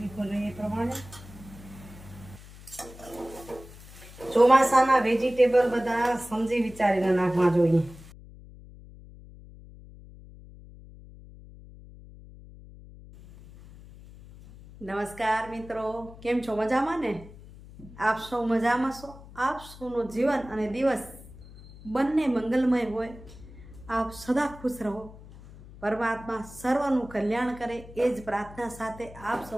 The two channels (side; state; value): left; noise; hum, 18 dB below the sound